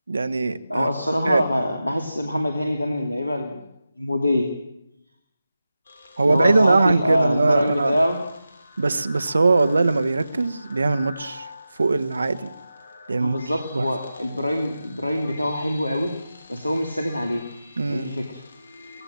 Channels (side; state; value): both; inverted; correlation -0.92